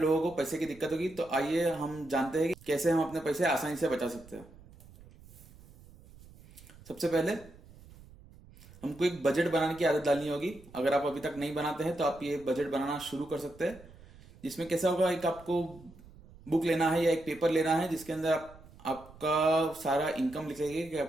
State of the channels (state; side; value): noise; right; rumble, 22 dB below the sound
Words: को पैसे की दिक्कत होगी, तो आइए हम जानते हैं कि कैसे हम अपने पैसे आसानी से बचा सकते हैं। सबसे पहले हमको एक बजट बनाने की आदत डालनी होगी। अगर आप अभी तक नहीं बनाते हैं तो आप ये बजट बनाना शुरू कर सकते हैं। जिसमें कैसा होगा, एक आपको बुक लेना है या एक पेपर लेना है जिसके अंदर आपका सारा इनकम लिखेंगे कि